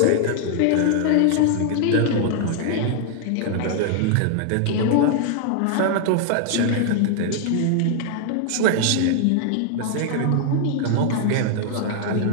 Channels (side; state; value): both; different; correlation 0.00